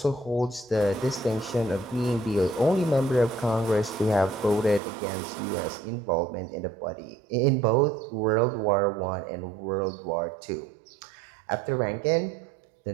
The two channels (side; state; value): left; drops out; at 4.8 s